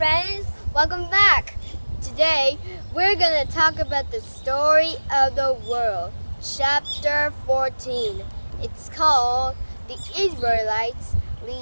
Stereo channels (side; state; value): both; inverted; correlation -1.00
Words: Welcome back! Today, we're gonna talk about the story of the world, chapter 14. It's called The Israelites